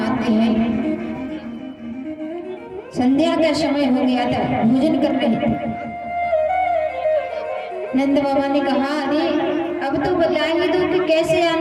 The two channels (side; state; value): both; identical; correlation 1.00